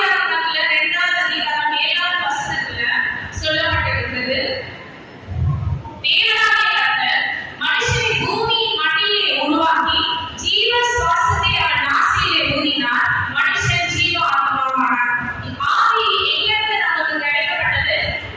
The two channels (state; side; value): identical; both; correlation 1.00